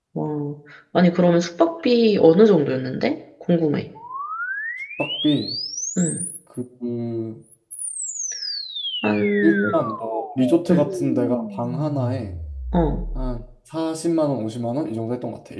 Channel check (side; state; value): both; identical; correlation 1.00